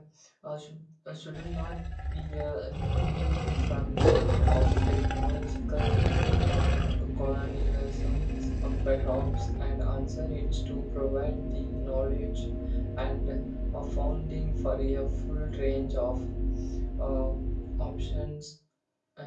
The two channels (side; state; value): both; identical; correlation 1.00